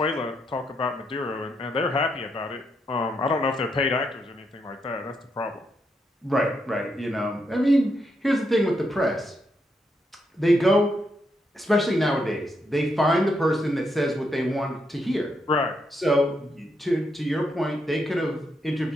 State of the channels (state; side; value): normal; both; correlation 0.80